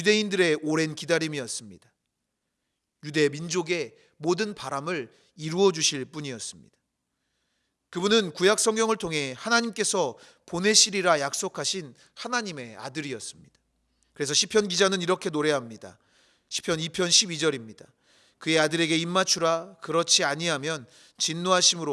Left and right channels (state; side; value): identical; both; correlation 1.00